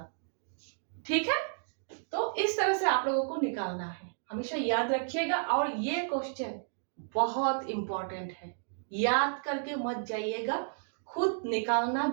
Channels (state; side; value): silent; left; digital silence